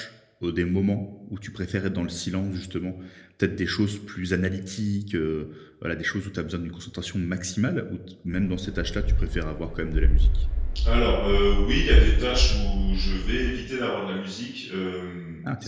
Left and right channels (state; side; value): identical; both; correlation 1.00